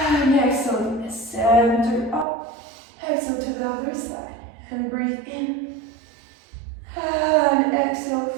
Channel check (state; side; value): drops out; left; at 2.2 s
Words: exhale, center up. Exhale to the other side, and breathe in. And exhale,